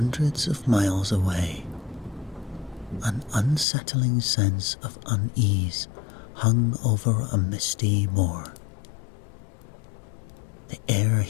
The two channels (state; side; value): drops out; right; at 3.7 s